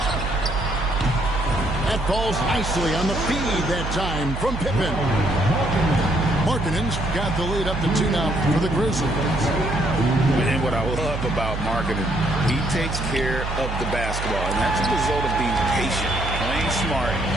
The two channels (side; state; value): right; noise; hum, 5 dB below the sound